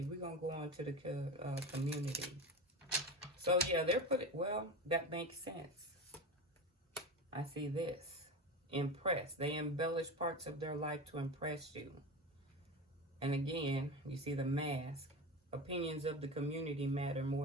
We're going to go on to the community. So, yeah, they're putting, well, that makes sense. I see this. Impress. They embellish parts of their life to impress you. And again, you see the mask. Opinions of the community matter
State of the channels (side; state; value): both; normal; correlation 0.26